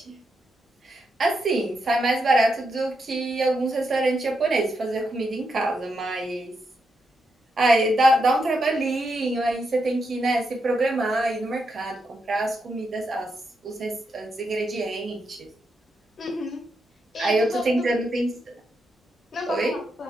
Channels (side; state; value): both; normal; correlation 0.83